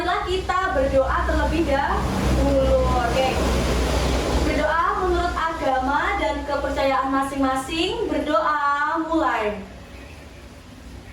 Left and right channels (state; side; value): identical; both; correlation 1.00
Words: kita berdoa terlebih dahulu. Oke. Berdoa menurut agama dan kepercayaan masing-masing. Berdoa mulai.